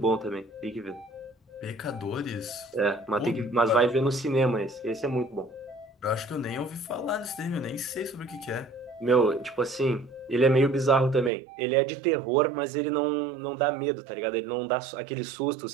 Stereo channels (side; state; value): left; drops out; at 11.3 s